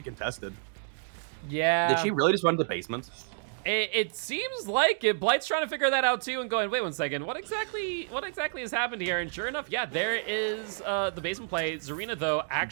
contested. Yeah. Did she really just run to the basement? It seems like it. Blight's trying to figure that out too and going, wait 1 second, what exactly has happened here? And sure enough, yeah, there is the basement play. Zarina, though,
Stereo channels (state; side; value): silent; left; digital silence